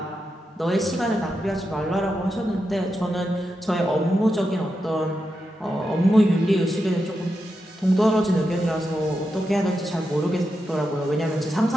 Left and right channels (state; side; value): normal; both; correlation 0.87